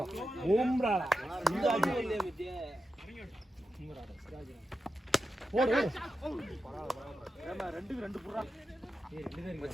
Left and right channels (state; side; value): normal; both; correlation 0.90